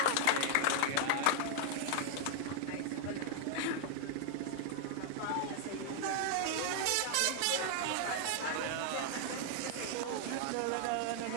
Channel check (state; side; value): different; both; correlation 0.00